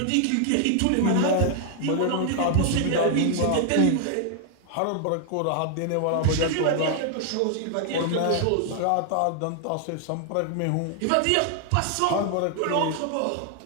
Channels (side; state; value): both; different; correlation 0.00